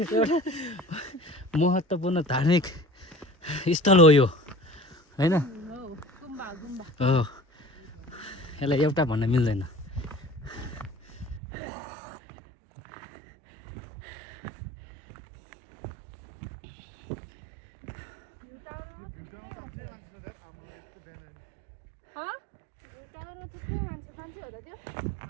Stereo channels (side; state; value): left; drops out; at 11.4 s